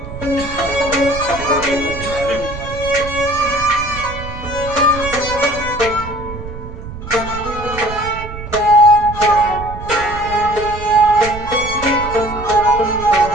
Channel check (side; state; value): right; noise; rumble, 11 dB below the sound